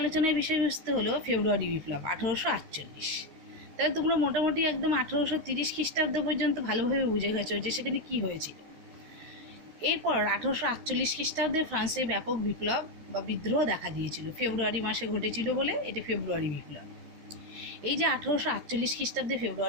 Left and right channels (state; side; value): late; left; 13 ms